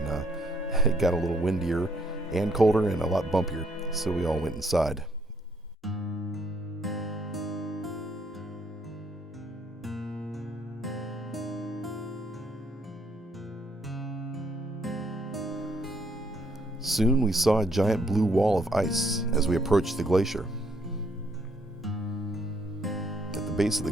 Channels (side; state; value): both; normal; correlation 0.69